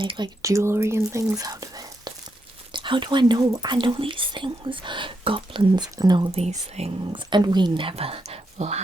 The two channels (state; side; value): normal; both; correlation 0.82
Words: like jewelry and things out of it. How do I know? I know these things. Goblins know these things, and we never